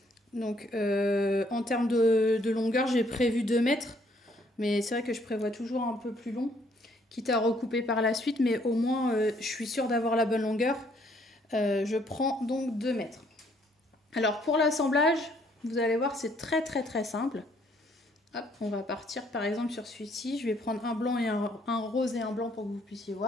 Donc en termes de longueur j'ai prévu 2 mètres, mais c'est vrai que je prévois toujours un peu plus long, quitte à recouper par la suite, mais au moins je suis sûre d'avoir la bonne longueur. Je prends donc 2 mètres. Alors pour l'assemblage, vous allez voir, c'est très simple. Hop, on va partir par exemple sur celui-ci. Je vais prendre un blanc et un rose et un blanc pour que vous puissiez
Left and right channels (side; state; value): both; normal; correlation 0.66